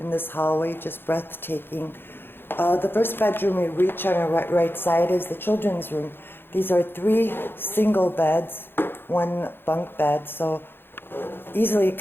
this hallway, just breathtaking. The first bedroom we reach on our right side is the children's room. These are 3 single beds, 1 bunk bed, so easily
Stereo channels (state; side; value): late; right; 0.10 ms